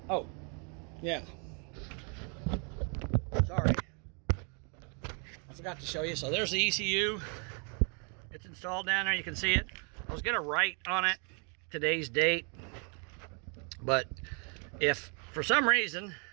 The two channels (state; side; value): quieter; left; 37.1 dB